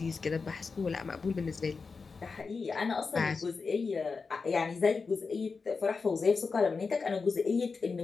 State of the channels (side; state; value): right; quieter; 4.7 dB